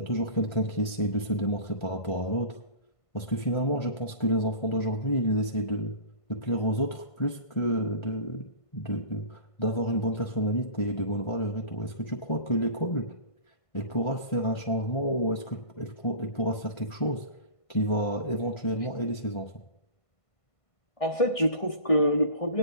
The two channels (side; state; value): right; late; 1.5 ms